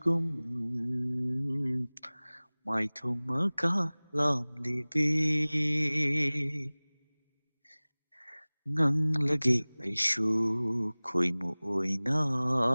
Maithong makalam libi nganglagi aishu khoimu oina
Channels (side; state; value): both; inverted; correlation -1.00